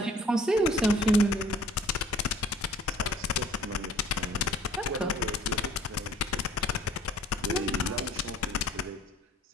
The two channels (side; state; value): both; normal; correlation 0.54